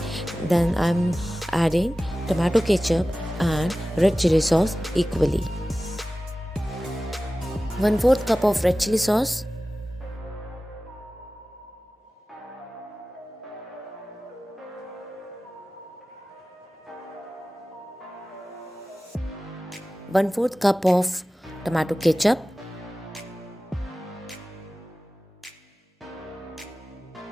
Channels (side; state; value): both; normal; correlation 0.96